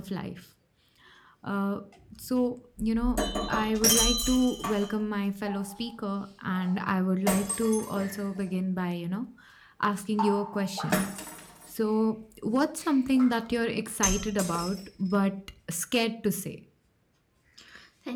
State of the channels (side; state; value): both; identical; correlation 1.00